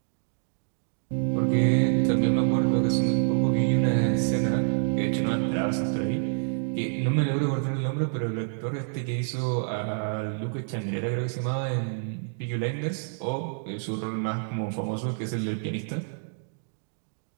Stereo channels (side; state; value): left; silent; digital silence